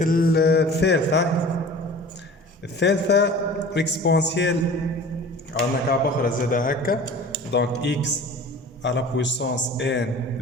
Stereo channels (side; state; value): both; normal; correlation 0.41